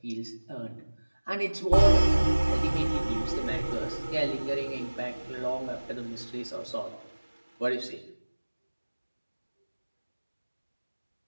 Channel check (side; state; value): both; inverted; correlation -1.00